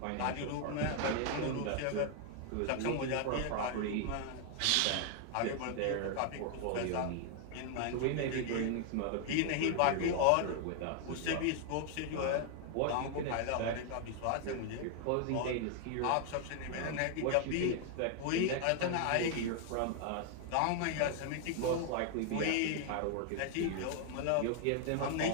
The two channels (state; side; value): different; both; correlation 0.00